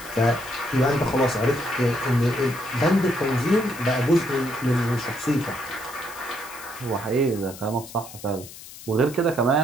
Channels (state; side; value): noise; left; hiss, 16 dB below the sound